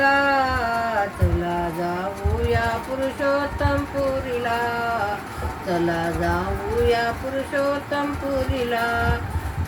चला जाऊया पुरुषोत्तम पुरीला, चला जाऊया पुरुषोत्तम पुरीला.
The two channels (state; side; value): identical; both; correlation 1.00